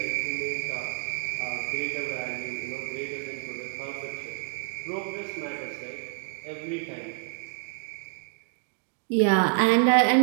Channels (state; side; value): silent; left; digital silence